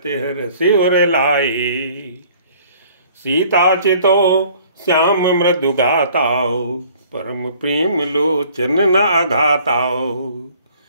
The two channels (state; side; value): inverted; both; correlation -0.55